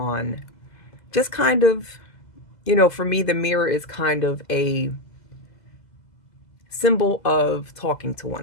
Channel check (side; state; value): right; late; 2.0 ms